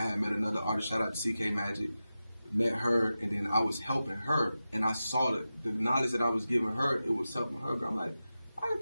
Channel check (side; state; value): both; inverted; correlation -0.93